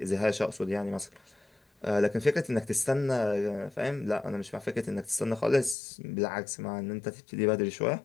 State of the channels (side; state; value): right; drops out; at 5.8 s